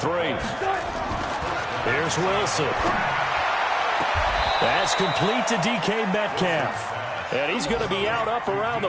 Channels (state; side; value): identical; both; correlation 1.00